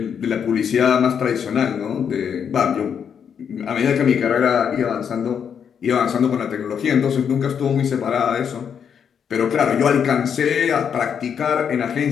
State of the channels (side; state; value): right; quieter; 7.6 dB